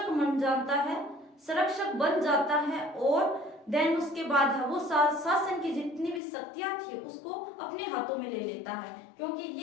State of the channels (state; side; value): drops out; right; at 6.2 s